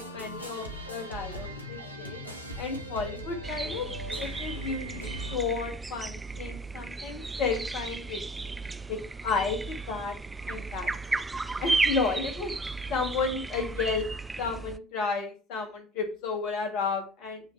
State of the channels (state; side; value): normal; both; correlation 0.42